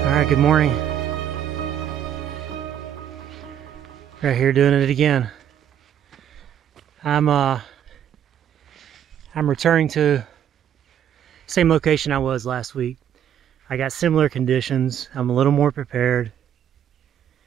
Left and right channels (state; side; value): quieter; left; 9.7 dB